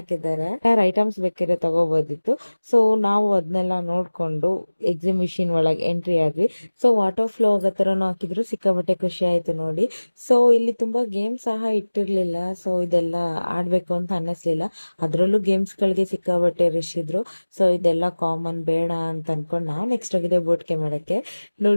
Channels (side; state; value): both; inverted; correlation -1.00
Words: ಐಟಮ್ಸ್ ಬೇಕಿದ್ರೆ ತಗೋಬೋದಿತ್ತು. ಸೊ ನಾವು ಅದನ್ನೆಲ್ಲ ನೋಡ್ಕೊಂಡು ಎಕ್ಸಿಬಿಷನ್ ಒಳಗೆ ಎಂಟ್ರಿ ಆದ್ವಿ. ಸೊ ವಾಟರ್ ಫ್ಲೋ ಆಗೋ ಥರನೂ ಹಾಕಿದ್ರು, ಸಿಕ್ಕಾಬಟ್ಟೆ ಖುಷಿ ಆಯ್ತು ನೋಡಿ. ಸೊ ಇಲ್ಲಿ ತುಂಬಾ ಗೇಮ್ಸ್ ಸಹ ಇಟ್ಟಿರ್ಲಿಲ್ಲ. ಸೊ ಇದೆಲ್ಲ ಆಡ್ಬೇಕು ಅಂತ ಅನ್ನಿಸ್ಲಿಲ್ಲ. ಅದ್ರಲ್ಲೂ ಗೇಮ್ಸ್ಗಳಿಗೆ ಸಿಕ್ಕಾಬಟ್ಟೆ ರಶ್ ಇದ್ರು. ಸೊ ಇದೆಲ್ಲ ಕಾಮನ್ ಬೇಡ ಅಂತ ಅನ್ಕೊಂಡು ನಾವು ನೆಕ್ಸ್ಟ್ ಹೋಗಿದೆ ಬೋಟ್ಗೆ ಮಾಡಕ್ಕೆ.